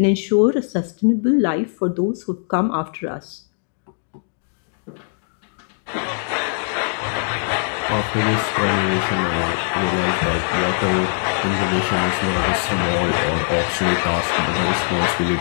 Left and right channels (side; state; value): right; silent; 65 dB below the other